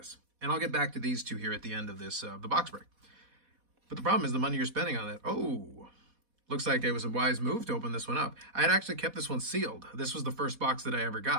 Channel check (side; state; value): left; late; 4.1 ms